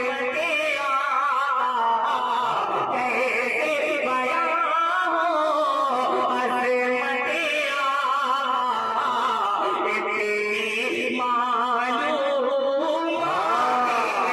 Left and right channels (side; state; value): both; identical; correlation 1.00